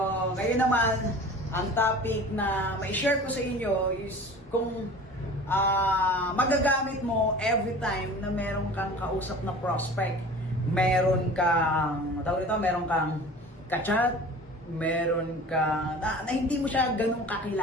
ngayon naman, ang topic na may share ko sa inyo is kung magagamit mo every time na meron kang kausap na prospect. Meron kang, meron kang kachat, meron kang, na hindi mo siya ganun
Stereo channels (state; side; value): normal; both; correlation 0.41